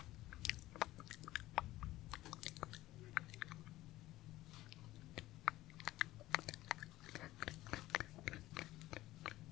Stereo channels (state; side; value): quieter; right; 16.6 dB